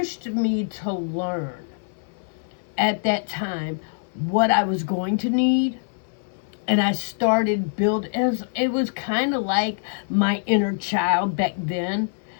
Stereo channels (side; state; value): right; silent; 60 dB below the other